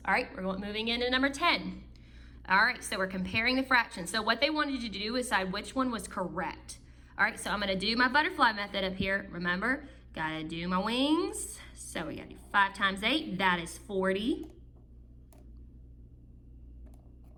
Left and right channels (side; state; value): both; identical; correlation 1.00